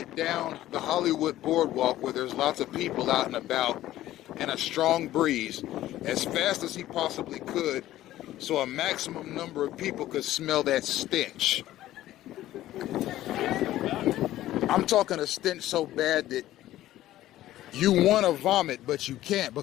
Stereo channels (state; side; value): quieter; right; 14.4 dB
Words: down the Hollywood boardwalk where there's lots of people out and about and a strong breeze as fast as he possibly could so a maximum number of people could smell that stench. I'm talking a stench so bad that you want to vomit, but you can't